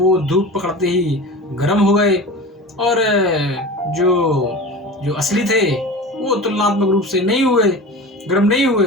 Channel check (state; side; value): normal; both; correlation 0.33